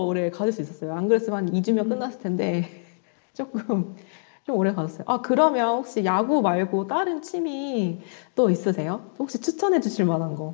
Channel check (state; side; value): silent; right; digital silence